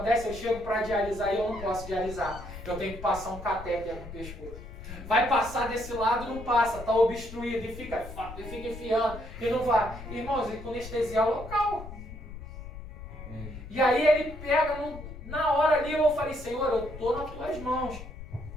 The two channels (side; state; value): left; noise; rumble, 12 dB below the sound